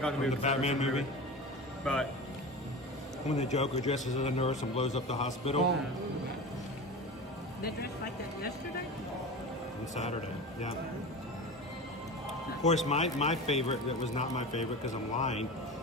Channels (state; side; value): normal; both; correlation 0.30